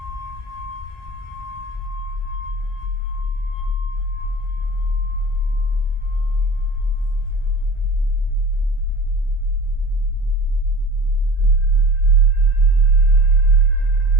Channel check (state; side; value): normal; both; correlation 0.37